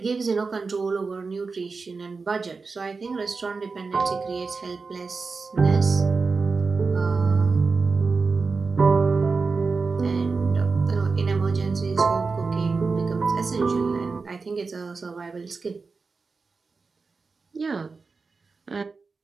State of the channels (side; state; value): left; quieter; 4.4 dB